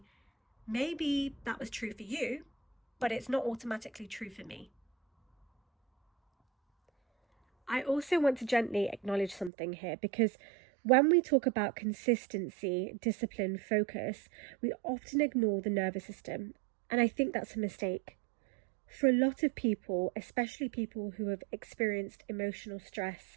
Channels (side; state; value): left; drops out; at 9.5 s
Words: maybe that was true for you, but it's not automatically true for me. I also want to gently acknowledge something here, because when we talk about consistency, discipline, focus, we often ignore the nervous system. And I think that's a mistake. For a lot of people, especially people who have experienced emotional